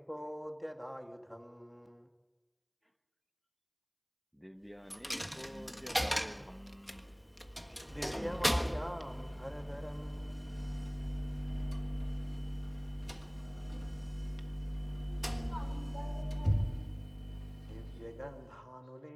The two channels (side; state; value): both; identical; correlation 1.00